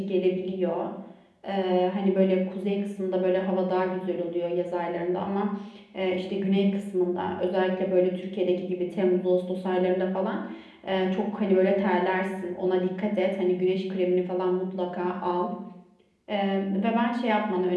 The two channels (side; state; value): both; identical; correlation 1.00